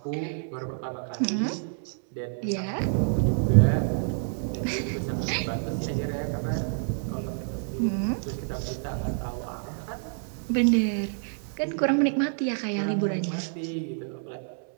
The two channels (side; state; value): left; silent; digital silence